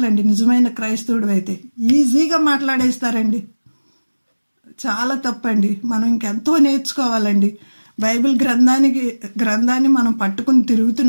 నిజమైన క్రైస్తవుడు అయితే ఈజీగా మాట్లాడేస్తారండి. చాలా తప్పండి. మనం ఇంకెంతో నేర్చుకోవాలండి. బైబిల్ గ్రంథాన్ని మనం పట్టుకుని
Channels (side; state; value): both; inverted; correlation -1.00